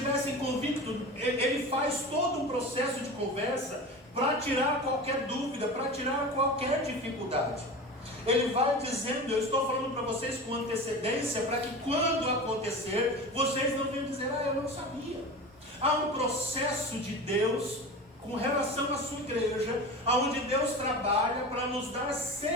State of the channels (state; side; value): normal; both; correlation 0.31